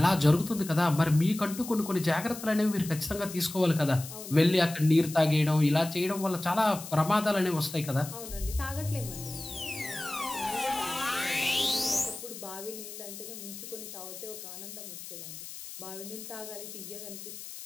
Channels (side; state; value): left; noise; hiss, 12 dB below the sound